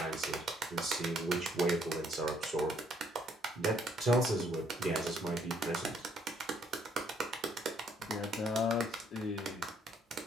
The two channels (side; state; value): both; normal; correlation 0.67